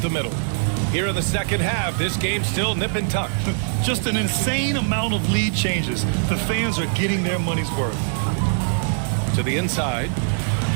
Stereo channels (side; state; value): left; silent; digital silence